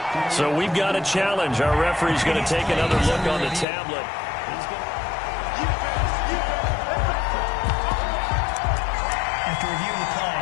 So we've got a challenge. Our referee's going to take another look on the tablet. After reviewing the play,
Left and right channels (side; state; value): right; drops out; at 3.7 s